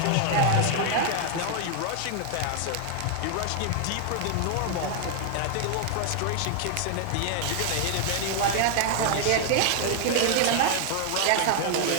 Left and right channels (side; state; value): both; different; correlation 0.00